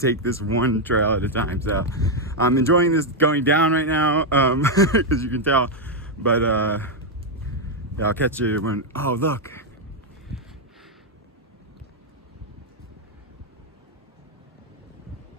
this one trail at a time. So I'm enjoying this going down right now, as you can tell, but yeah, I'll catch you when, oh look,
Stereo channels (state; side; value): normal; both; correlation 0.01